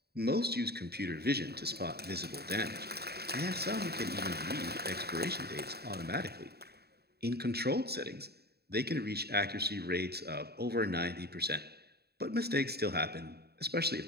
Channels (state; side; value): late; left; 0.47 ms